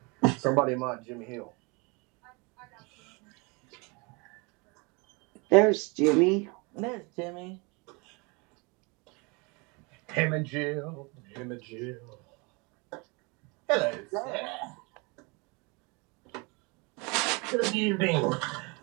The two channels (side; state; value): left; quieter; 29.4 dB